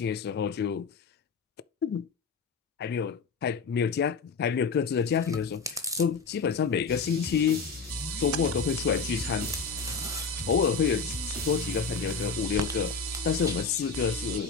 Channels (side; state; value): right; quieter; 4.9 dB